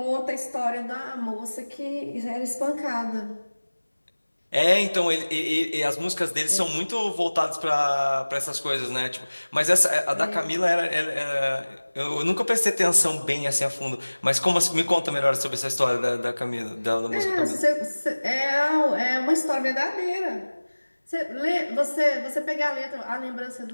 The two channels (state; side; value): inverted; both; correlation -1.00